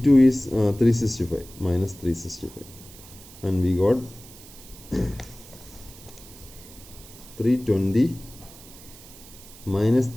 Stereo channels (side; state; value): right; noise; hiss, 19 dB below the sound